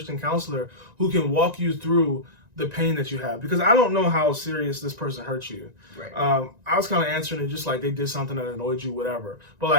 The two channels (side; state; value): left; late; 1.9 ms